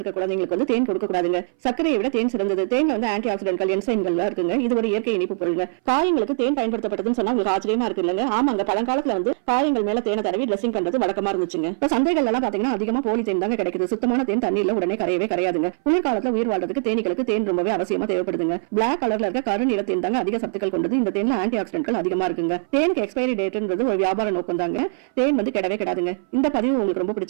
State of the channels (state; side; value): silent; left; 60 dB below the other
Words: குழந்தைங்களுக்கு வந்து தேன் கொடுக்க கூடாதுங்க. சர்க்கரையை விட தேன் சிறந்தது. தேன்ல வந்து ஆன்டி ஆக்சிடென்ட்கள், என்சைம்கள் இருக்குங்க. இது ஒரு இயற்கை இனிப்பு பொருளுங்க. காயங்களுக்கு தேன் பயன்படுத்தப்பட்டதுன்னு சொன்னா உங்களுக்கு ஆச்சரியமா இருக்கு இல்லங்க? ஆமாங்க, பழங்காலத்துல வந்து காயங்கள் மேல தேனை தடவி ட்ரெஸ்ஸிங் பண்றது வழக்கமா இருந்துச்சுங்க. இப்ப சந்தைகள் எல்லாம் பாத்தீங்கன்னா அதிகமா போலி தேன் தாங்க கிடைக்குது. சுத்தமான தேன் தண்ணீர்ல உடனே கரையவே கரையாதுங்க. குளிர்காலத்துல உயிர் வாழ்றதுக்கு தேனீகளுக்கு தேன் ரொம்பவே அவசியமா தேவைப்படுதுங்க. பிளாக் கலர்ல இருக்க கருநிற தேன் தாங்க அதிக சத்துக்கள் கொண்டது. இந்த தேன்ல ஆன்டி ஆக்சிடென்ட்கள் அதிகமா இருக்குங்க. தேனுக்கு எக்ஸ்பைரி டேட்ன்றது ஒரு வியாபார நோக்கம் தாங்க. தேன் வந்து கிடவே கிடாதுங்க. இந்த பதிவு உங்களுக்கு ரொம்ப